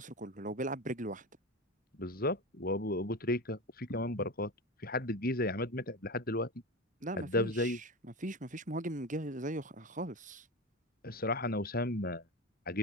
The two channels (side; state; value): both; normal; correlation 0.24